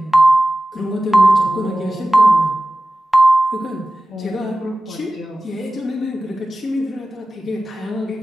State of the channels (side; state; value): both; normal; correlation 0.95